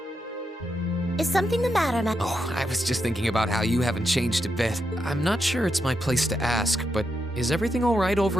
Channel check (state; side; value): normal; both; correlation 0.84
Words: Is something the matter, Ma? Oh, I was just thinking about how you haven't changed a bit. I'm not sure it's my place to ask, but is everything all right